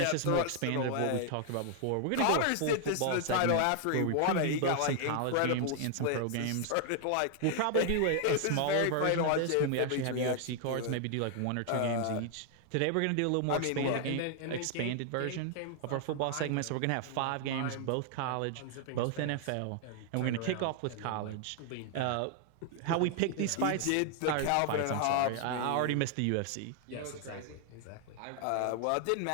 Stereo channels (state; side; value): different; both; correlation 0.00